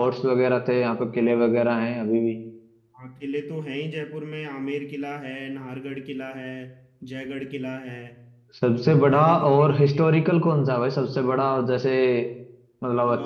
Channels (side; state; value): both; identical; correlation 1.00